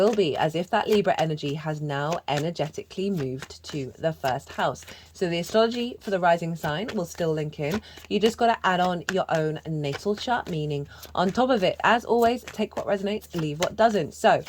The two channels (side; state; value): both; identical; correlation 1.00